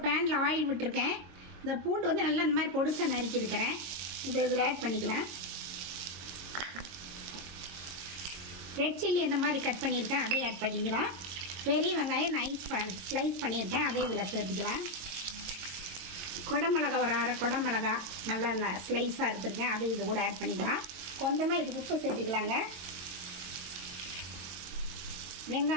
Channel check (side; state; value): left; late; 22 ms